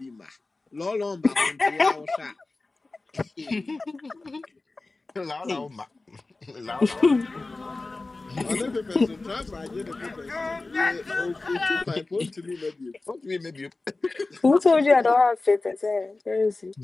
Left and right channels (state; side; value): quieter; right; 3.4 dB